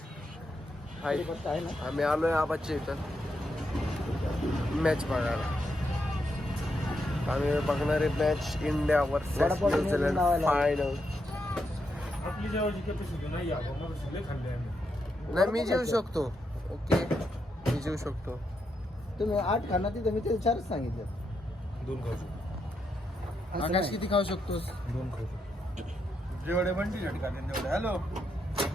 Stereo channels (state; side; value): normal; both; correlation 0.82